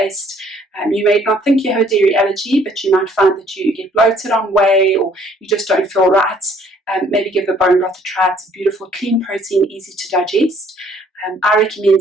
You may not think you have a dairy allergy, but you might find that you get bloated on whey, or you just don't feel right. Maybe give the bone broth a try. It's a beautiful, clean protein, easy to digest. I recommend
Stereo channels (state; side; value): normal; both; correlation 0.61